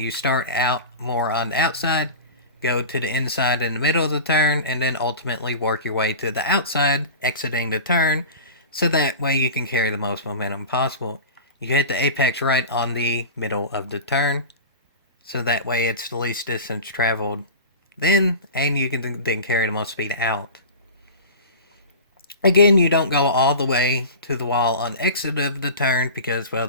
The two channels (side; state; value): both; inverted; correlation -0.33